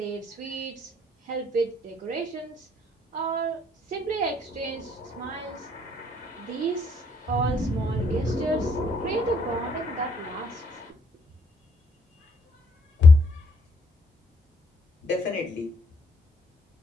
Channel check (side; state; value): both; normal; correlation 0.68